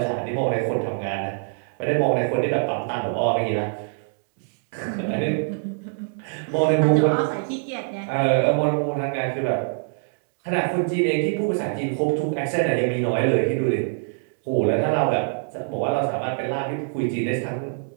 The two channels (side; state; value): left; silent; digital silence